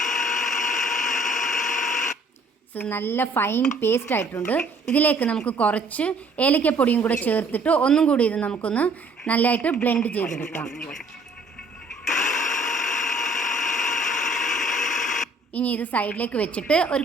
നല്ല ഫൈൻ പേസ്റ്റ് ആയിട്ടുണ്ട്. ഇതിലേക്ക് നമുക്ക് കുറച്ച് ഏലക്കപ്പൊടിയും കൂടെ ചേർത്തിട്ട് ഒന്നും കൂടി ഇത് നമുക്കൊന്ന് നല്ലതായിട്ട് ബ്ലെൻഡ് ചെയ്തെടുക്കാം. ഇനി ഇത് സൈഡിലേക്ക് വെച്ചിട്ട് ഒരു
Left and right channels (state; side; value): quieter; left; 3.0 dB